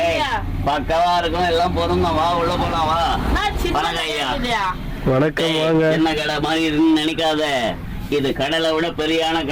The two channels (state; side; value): identical; both; correlation 1.00